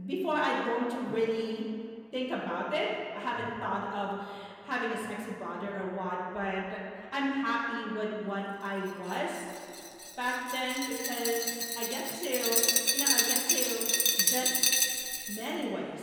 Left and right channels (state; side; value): identical; both; correlation 1.00